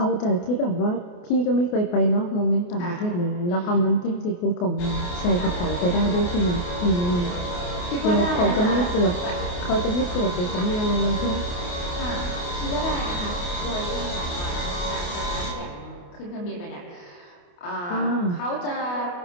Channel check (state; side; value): late; right; 28 ms